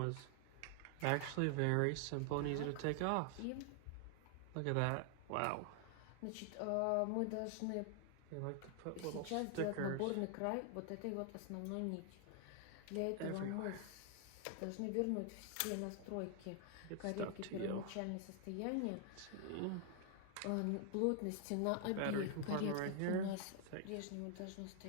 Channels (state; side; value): different; both; correlation 0.00